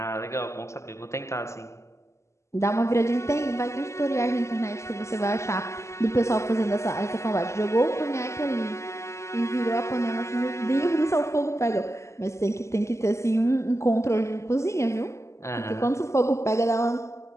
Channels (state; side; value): late; right; 0.13 ms